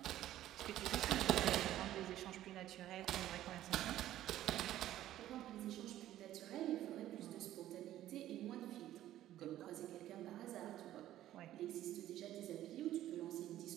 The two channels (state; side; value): quieter; left; 13.3 dB